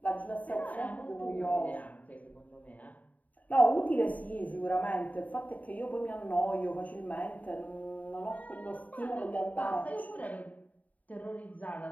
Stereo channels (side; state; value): right; late; 0.072 ms